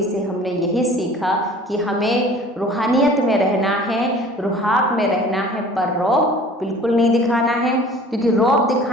से हमने यही सीखा कि हमें रूहानियत में रहना है, रुहाब में रहना है, पर रौब बिल्कुल नहीं दिखाना है, क्योंकि रौब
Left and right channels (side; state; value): both; normal; correlation 0.47